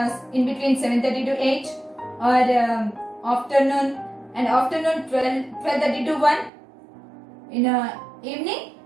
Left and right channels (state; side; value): drops out; left; at 6.5 s